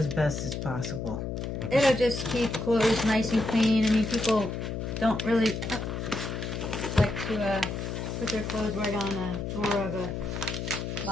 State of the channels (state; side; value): noise; left; hum, 4 dB below the sound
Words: best as possible. It'll just keep clothes nice and clean. I mean, people don't really like to put their clothes right on a drawer of a